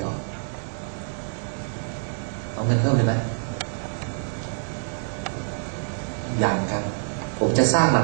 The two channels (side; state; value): left; silent; digital silence